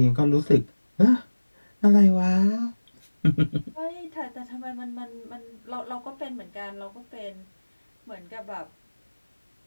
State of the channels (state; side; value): inverted; both; correlation -1.00